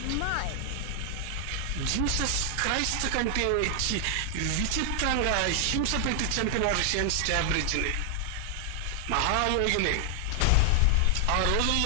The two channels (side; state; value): both; different; correlation 0.00